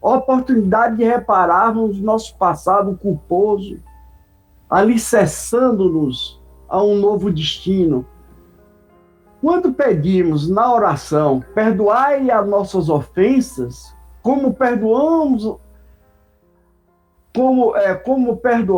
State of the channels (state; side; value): identical; both; correlation 1.00